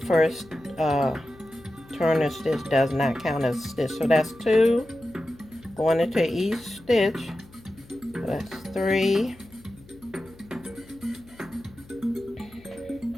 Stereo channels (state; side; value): noise; left; hum, 24 dB below the sound